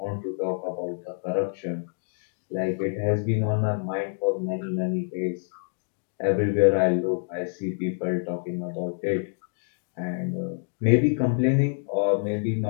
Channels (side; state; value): right; silent; digital silence